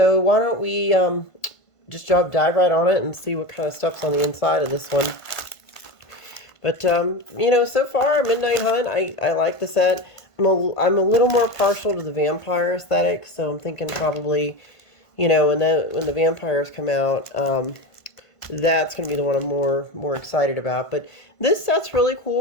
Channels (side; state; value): right; late; 1.5 ms